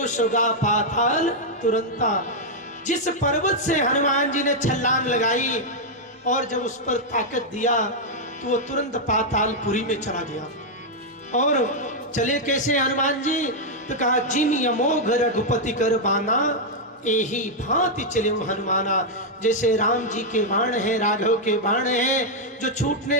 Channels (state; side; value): normal; both; correlation -0.03